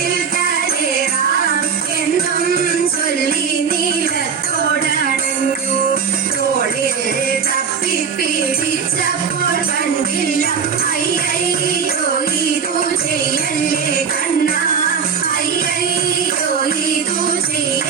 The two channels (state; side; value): quieter; left; 6.4 dB